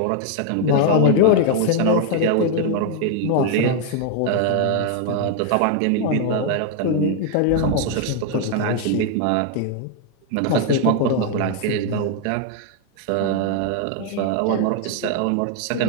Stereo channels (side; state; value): both; different; correlation 0.01